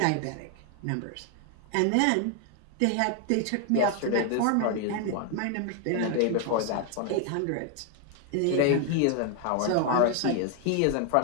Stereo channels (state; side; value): different; both; correlation 0.00